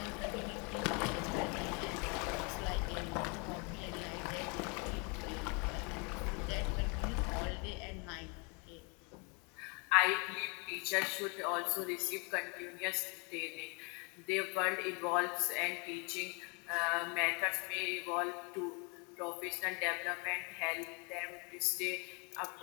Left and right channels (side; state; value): right; quieter; 32.5 dB